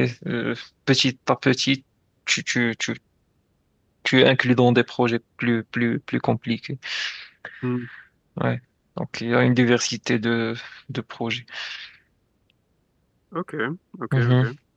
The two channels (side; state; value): both; identical; correlation 1.00